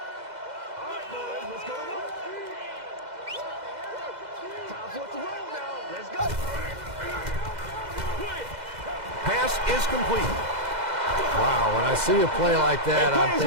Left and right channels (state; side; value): late; left; 2.0 ms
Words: Pass is complete. Wow, when I see a play like that, I'm